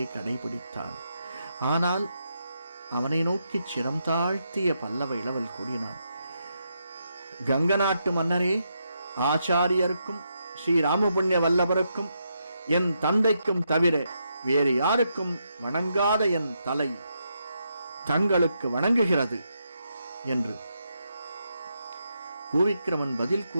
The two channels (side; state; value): both; inverted; correlation -0.81